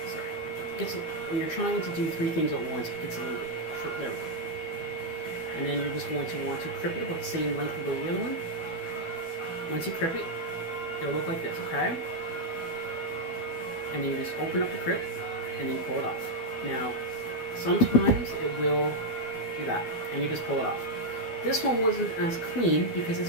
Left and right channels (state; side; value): late; right; 12 ms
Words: Sorry. When you're trying to do three things at once, it gets a little bit short. There we go. And then you're just going to want to crip it about the same length of the other one. Once you crip it, it'll look like this, okay? And then you just open up the crip, and then you pull it off. Now, sometimes it will do that, and you just pull it off. This one wasn't as clean, because